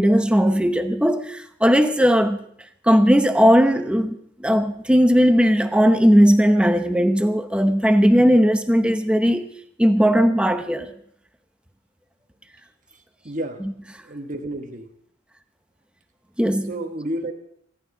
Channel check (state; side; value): normal; both; correlation 0.94